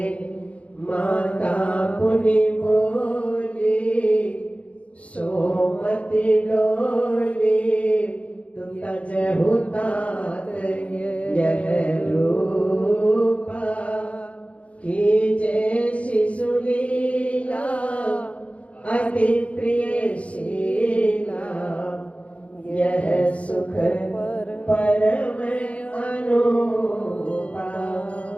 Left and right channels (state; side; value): late; right; 0.064 ms